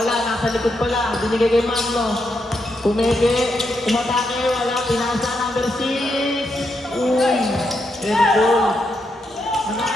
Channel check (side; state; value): both; normal; correlation 0.81